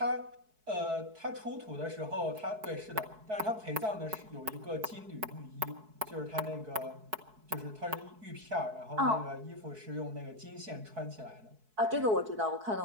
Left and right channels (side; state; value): left; late; 4.6 ms